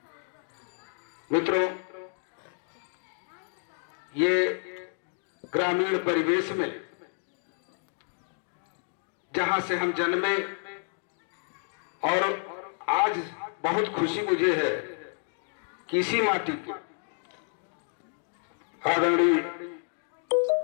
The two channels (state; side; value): silent; right; 55 dB below the other